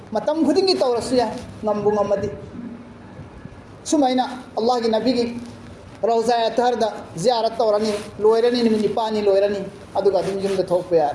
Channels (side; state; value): both; identical; correlation 1.00